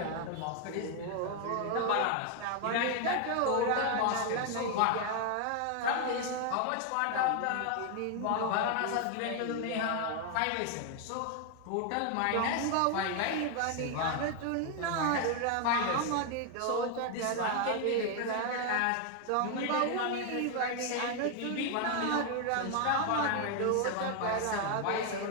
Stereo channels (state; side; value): different; both; correlation 0.00